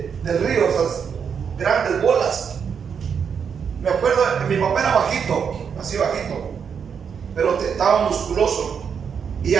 río, esas grandes bolas, Me acuerdo que mi papá era bajito, así bajito, pero estaba musculoso y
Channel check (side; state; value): left; quieter; 6.9 dB